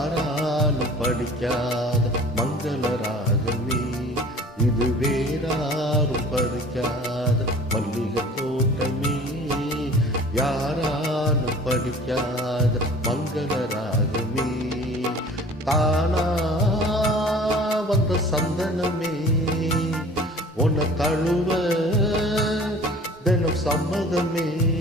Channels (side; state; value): both; normal; correlation 0.46